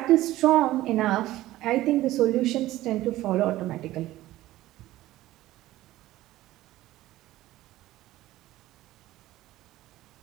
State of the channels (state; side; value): quieter; left; 15.9 dB